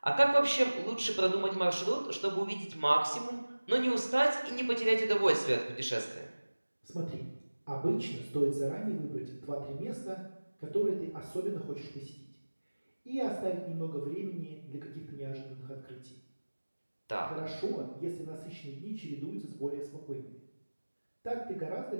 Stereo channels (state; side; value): inverted; both; correlation -1.00